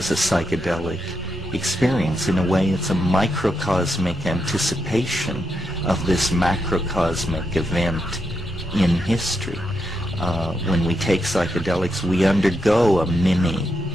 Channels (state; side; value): normal; both; correlation 0.83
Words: a psychedelic experience. In a way, it's a microcosmic anticipation of this macrocosmic event in history. When we take psychedelics, we undergo a mini